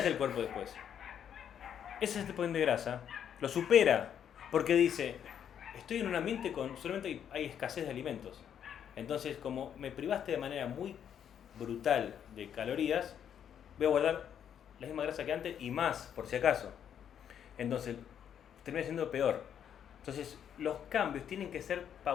el cuerpo después? Ese set point de grasa lo supera porque dice, estoy en un ambiente con solamente hay escasez de alimentos. Entonces, como me privaste de manera muy brutal de calorías, voy a guardar la misma grasa que antes y más, por si acaso. Entonces, termina siendo peor. Entonces, los cambios tienen que ser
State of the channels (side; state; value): right; quieter; 8.9 dB